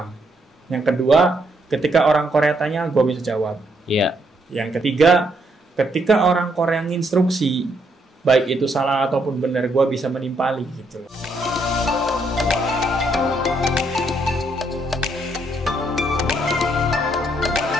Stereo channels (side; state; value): both; normal; correlation 0.74